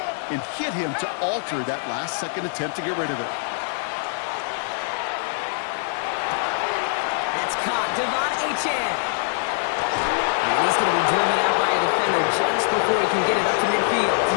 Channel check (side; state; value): right; silent; digital silence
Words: and hit him to alter that last-second attempt to get rid of it. That's caught. Devon Achane. And he's going to be driven out by a defender just before he can get it up to midfield.